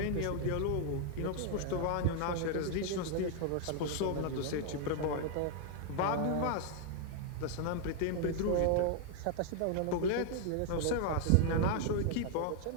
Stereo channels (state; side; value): different; both; correlation 0.00